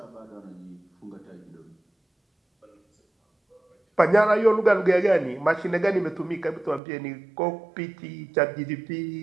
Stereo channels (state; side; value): drops out; left; at 6.8 s